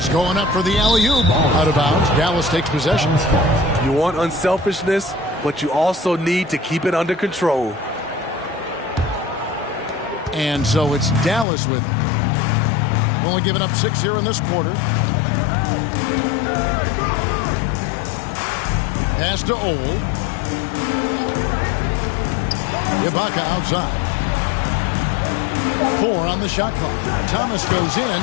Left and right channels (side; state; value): right; drops out; at 11.5 s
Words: going up for the alley-oop. Out of bounds. Dallas takes possession. You want unselfishness, but you also need to keep it under control. And so it's Dallas with it. Only giving up 6 here in this quarter. Pass to Ole. Ibaka outside. 4 on the shot clock. Thomas goes in,